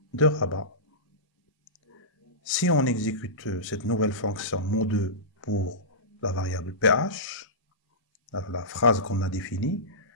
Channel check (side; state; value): both; normal; correlation -0.19